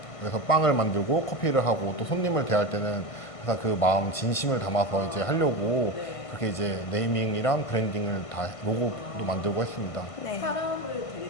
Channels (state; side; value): late; right; 1.5 ms